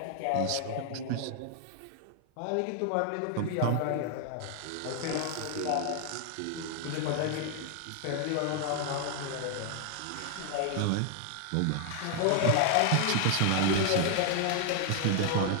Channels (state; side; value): different; both; correlation 0.00